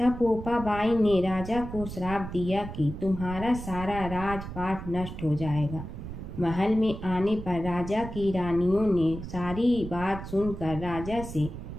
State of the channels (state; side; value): noise; right; rumble, 10 dB below the sound